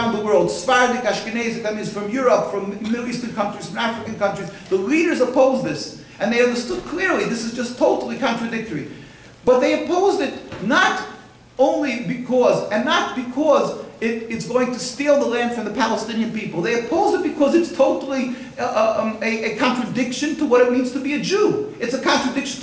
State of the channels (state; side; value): identical; both; correlation 1.00